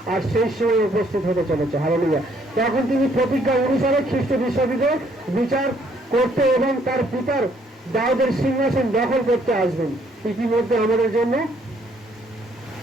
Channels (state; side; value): normal; both; correlation 0.66